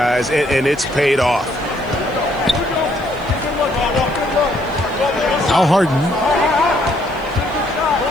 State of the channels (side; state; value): left; noise; hiss, 27 dB below the sound